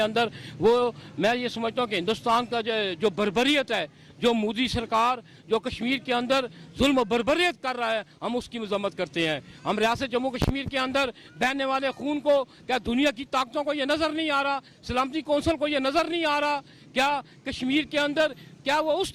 وہ میں یہ سمجھتا ہوں کہ ہندوستان کا جو بربریت ہے، جو مودی سرکار جو کشمیر کے اندر ظلم و بربریت کر رہا ہے، ہم اس کی مذمت کرتے ہیں۔ ہم ریاست جموں کشمیر کے اندر بہنے والے خون کو کیا دنیا کی طاقتوں کو یہ نظر نہیں آ رہا، سلامتی کونسل کو یہ نظر نہیں آ رہا؟ کیا کشمیر کے اندر کیا وہ اس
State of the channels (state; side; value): identical; both; correlation 1.00